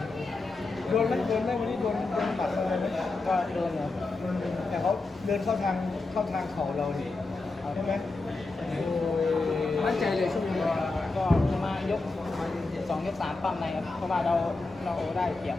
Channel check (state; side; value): quieter; right; 3.4 dB